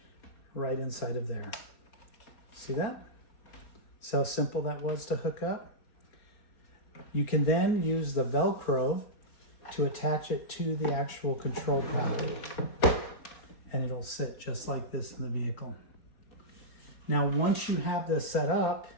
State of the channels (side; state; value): right; late; 4.2 ms